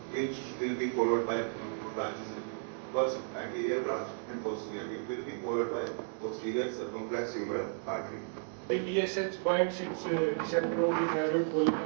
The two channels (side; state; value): left; silent; digital silence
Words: which will be followed by two branches. First anterior branch and posterior. It will be followed by posterior circumflex humeral artery. The TSH binds its receptor on the thyroid